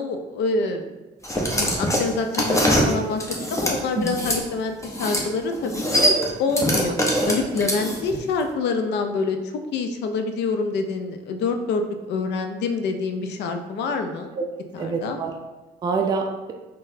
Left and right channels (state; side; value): normal; both; correlation 0.36